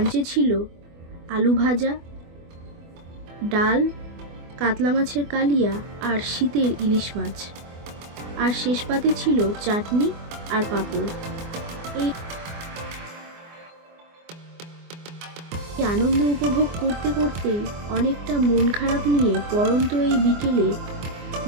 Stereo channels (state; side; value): late; left; 24 ms